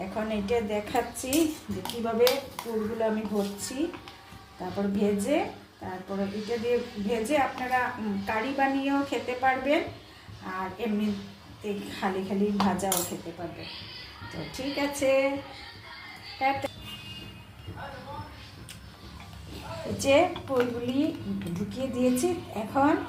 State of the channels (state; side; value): identical; both; correlation 1.00